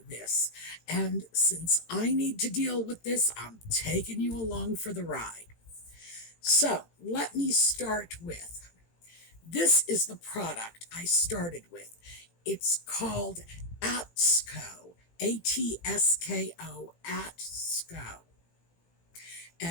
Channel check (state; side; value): late; right; 18 ms